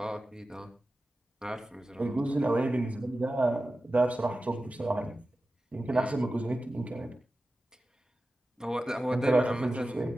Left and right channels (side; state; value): both; normal; correlation 0.94